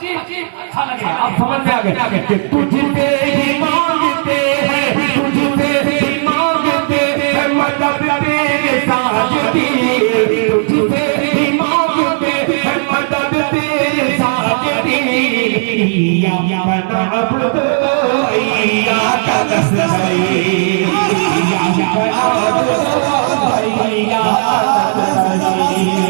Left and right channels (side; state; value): left; silent; digital silence